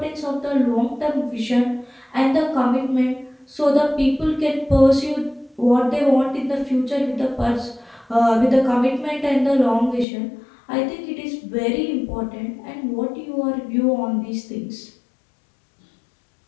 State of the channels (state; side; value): drops out; right; at 10.1 s